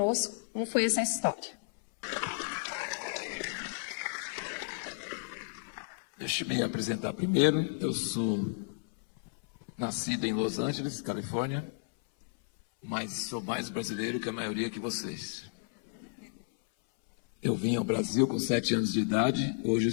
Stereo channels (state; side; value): silent; right; 56 dB below the other